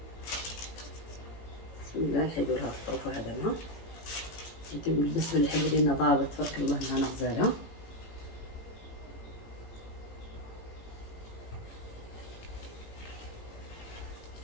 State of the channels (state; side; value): late; right; 18 ms